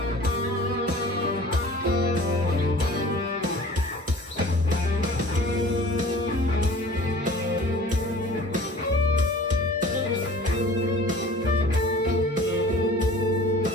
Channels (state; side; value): normal; both; correlation 0.45